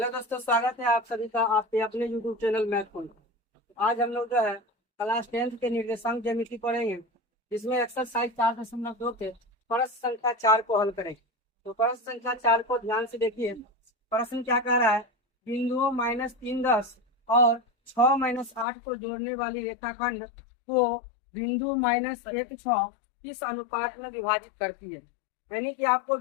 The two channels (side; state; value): right; drops out; at 18.7 s